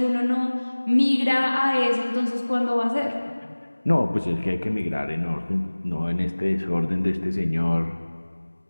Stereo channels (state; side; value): inverted; both; correlation -1.00